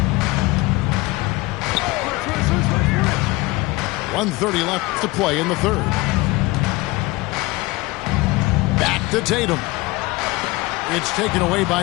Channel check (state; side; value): quieter; right; 21.5 dB